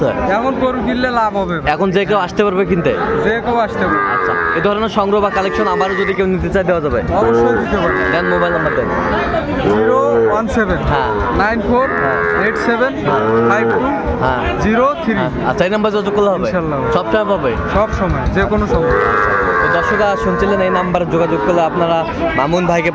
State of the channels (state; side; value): identical; both; correlation 1.00